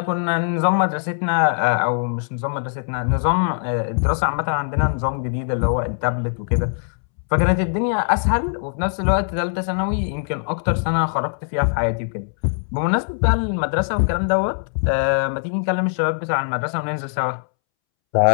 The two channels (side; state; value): right; silent; 65 dB below the other